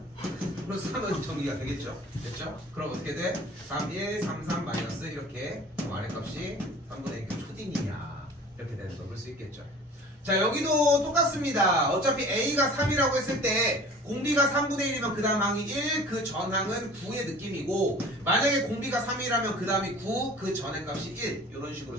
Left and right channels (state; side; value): normal; both; correlation 0.45